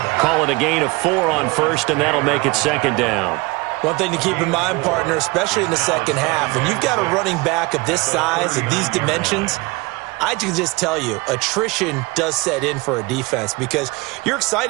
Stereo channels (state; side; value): quieter; left; 24.2 dB